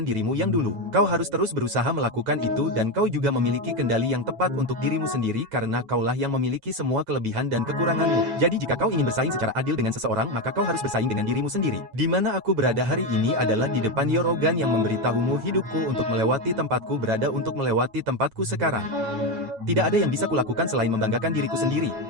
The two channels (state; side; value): late; left; 9.2 ms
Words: dirimu yang dulu. Kau harus terus berusaha melakukan itu dan kau juga memiliki kendali yang tepat untuk dirimu sendiri karena kaulah yang memiliki semua kelebihan dan kekuranganmu. Jadi jika kau ingin bersaing secara adil dengan seseorang maka kau harus bersaing dengan dirimu sendiri. Di mana aku berada hari ini adalah di depan Yorogan yang memberitahumu hidupku untuk melewati tempatku berada untuk melewati tempatku sekarang. Tidak ada yang bisa kulakukan selain membanggakan diriku sendiri,